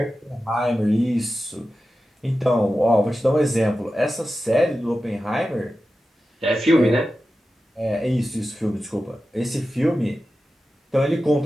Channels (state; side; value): normal; both; correlation 0.93